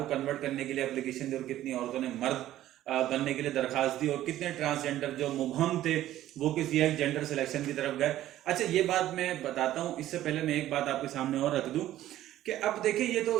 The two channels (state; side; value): quieter; left; 13.5 dB